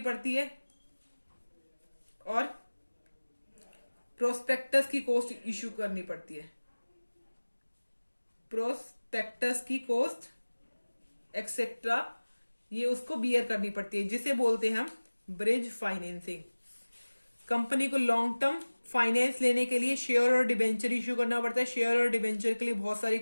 पड़ती है, और प्रोस्पेक्टस की कॉस्ट इश्यू करनी पड़ती है, प्रोस्पेक्टस की कॉस्ट एक्सेट्रा ये उसको बियर करनी पड़ती है, जिसे बोलते हैं हम ब्रिज फाइनेंसिंग। कंपनी को लॉन्ग टर्म फाइनेंस लेने के लिए शेयर और डिबेंचर इश्यू करना पड़ता है। शेयर और डिबेंचर के लिए बहुत सारी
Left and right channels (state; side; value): inverted; both; correlation -1.00